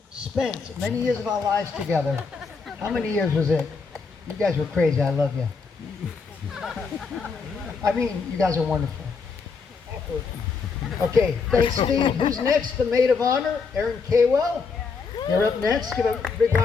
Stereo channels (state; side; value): quieter; right; 5.0 dB